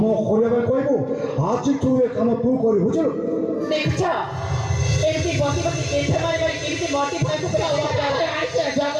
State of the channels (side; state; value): both; identical; correlation 1.00